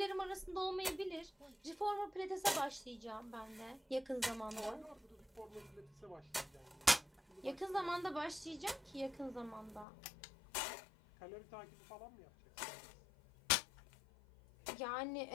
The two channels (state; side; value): drops out; right; at 9.9 s